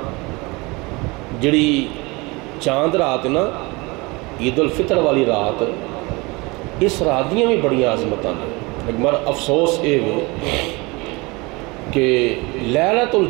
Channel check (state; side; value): quieter; left; 25.2 dB